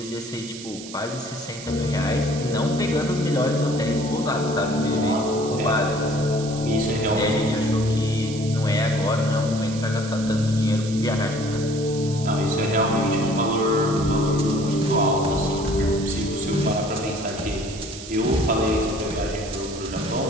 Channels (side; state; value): right; noise; hiss, 13 dB below the sound